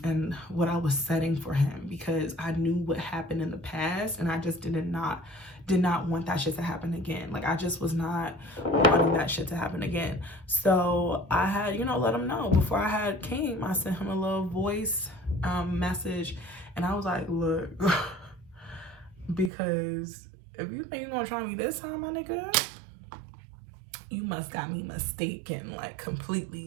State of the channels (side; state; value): left; drops out; at 19.5 s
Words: and what I was setting for him, because I knew what happened in the past, and I just did not want that shit to happen again. Like, I just was not wanting that shit to happen again. So I had, you know, let him know before I came. I sent him a little voice message, and I was like, look, because if you think you're gonna try me this time, my nigga, you must got me mistaken, like,